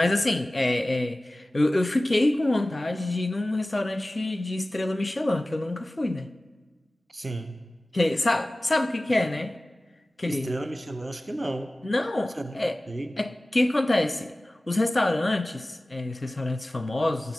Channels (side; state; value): both; normal; correlation 0.97